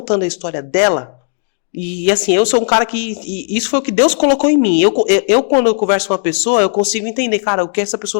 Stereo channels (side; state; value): right; silent; digital silence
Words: a história dela. E assim, eu sou um cara que... Isso foi o que Deus colocou em mim. Eu quando eu converso com uma pessoa, eu consigo entender, cara, o que essa